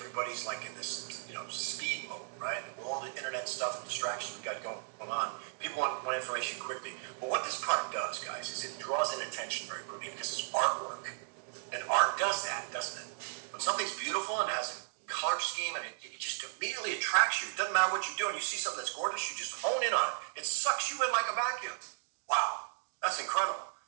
like in this, you know, speed mode, right? And with all the internet stuff and distractions we got going on, people want information quickly. But what this product does, guys, is it draws in attention very quickly because it's artwork. And art does that, doesn't it? When something's beautiful and has a color scheme and it just immediately attracts you. It doesn't matter what you're doing. You see something that's gorgeous, you just hone in on it. It sucks you in like a vacuum. Wow, that's incredible.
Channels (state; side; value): silent; left; digital silence